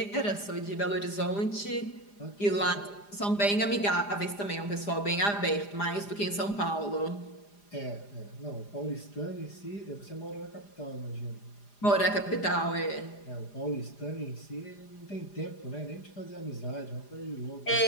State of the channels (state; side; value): late; right; 4.9 ms